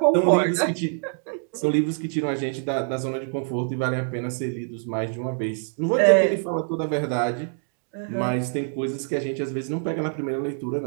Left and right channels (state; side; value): silent; left; 62 dB below the other